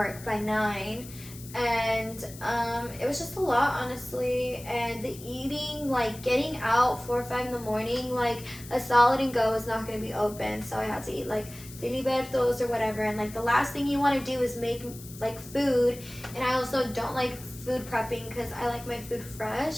by 9. And it was just a lot, honestly. And the eating, like getting out 4 or 5 in the morning, like a Solid and Go is not going to be open, so I had to eat like filibertos or whatever. And like the last thing you want to do is make like food, and I also don't like food prepping because I like my food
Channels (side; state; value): left; noise; hiss, 16 dB below the sound